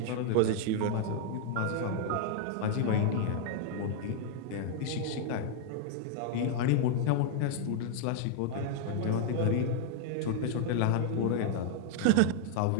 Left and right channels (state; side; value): different; both; correlation -0.01